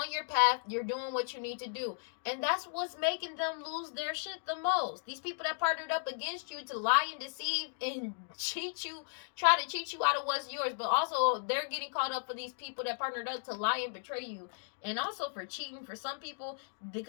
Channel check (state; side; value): silent; right; digital silence